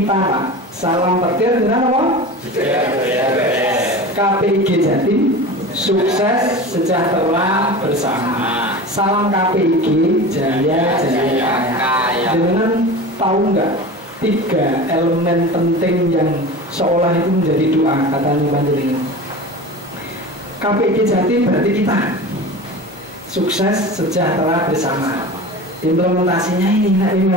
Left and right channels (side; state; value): both; normal; correlation 0.32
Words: Pak. Salam petir dengan apa? KPIG Jatim sukses sejahtera bersama. Salam KPIG jaya jaya kaya. Dengan tahu nggak 3 elemen penting yang seolah itu menjadi doa katanya panjenengan. KPIG Jatim berarti kita sukses sejahtera bersama. Implementasinya ini